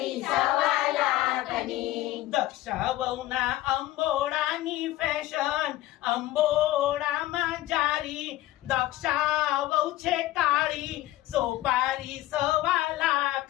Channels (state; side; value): quieter; right; 16.0 dB